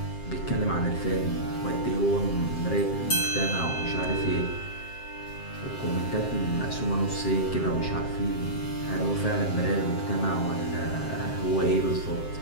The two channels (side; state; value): right; late; 7.6 ms